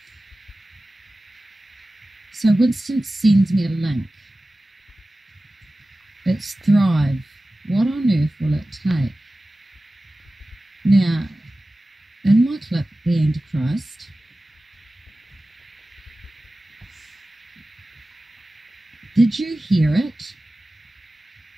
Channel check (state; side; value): normal; both; correlation 0.96